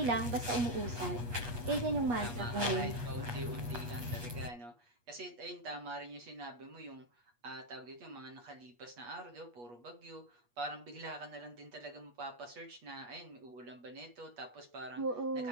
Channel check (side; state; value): left; late; 8.4 ms